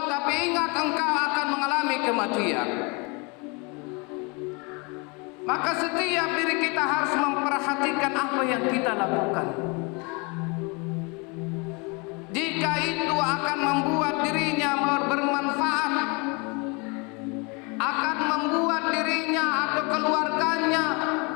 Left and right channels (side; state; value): right; quieter; 30.1 dB